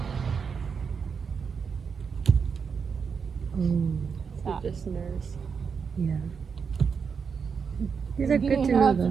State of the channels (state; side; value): quieter; left; 6.0 dB